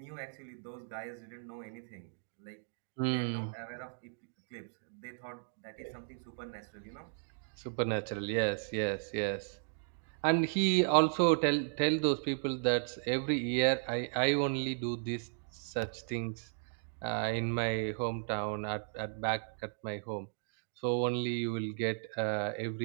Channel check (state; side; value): silent; left; digital silence